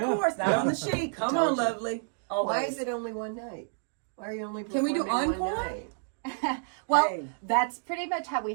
not on the sheet. Come on, lovely. Always. Why is it only one night? Why are you only Can we do performing one encore? night? Well, Hey. that's pretty much how we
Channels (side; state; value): left; silent; digital silence